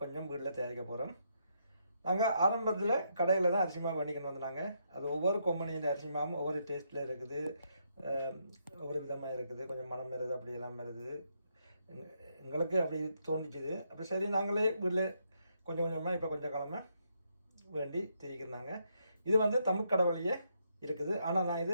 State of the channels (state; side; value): inverted; both; correlation -0.76